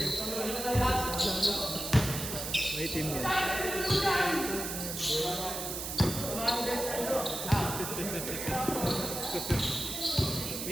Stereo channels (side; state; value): right; noise; hiss, 5 dB below the sound